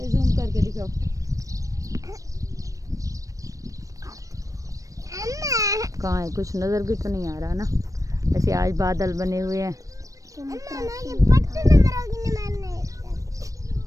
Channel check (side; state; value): left; late; 0.16 ms